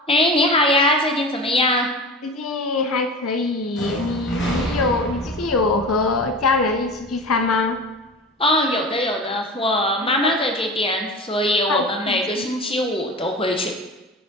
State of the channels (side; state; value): both; normal; correlation 0.32